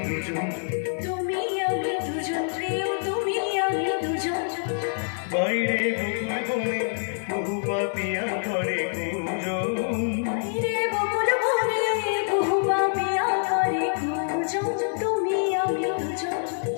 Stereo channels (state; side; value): silent; right; 61 dB below the other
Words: দুজন, তুমি আমি দুজন প্রিয়, তুমি আমি দুজন। বাইরে বকুল বনে বহু পাপিয়া করে গুঞ্জন। বাইরে বকুল বনে বহু পাপিয়া করে গুঞ্জন। তুমি আমি দুজন,